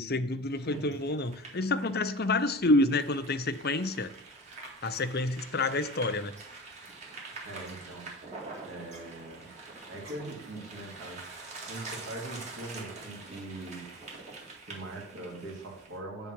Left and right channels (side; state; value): both; normal; correlation 0.34